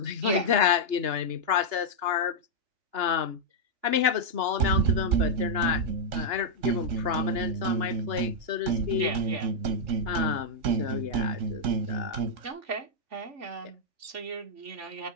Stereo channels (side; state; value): left; late; 2.9 ms